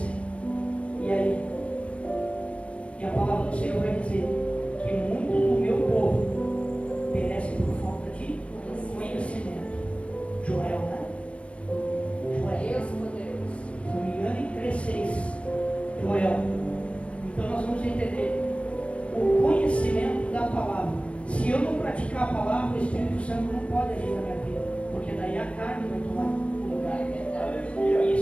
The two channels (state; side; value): late; right; 0.061 ms